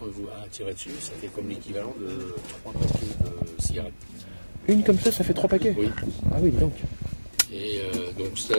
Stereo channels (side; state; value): both; inverted; correlation -1.00